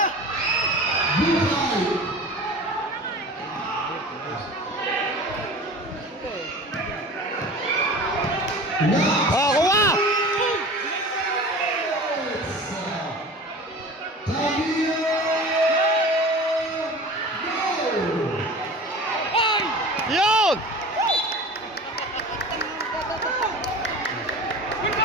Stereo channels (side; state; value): both; normal; correlation 0.37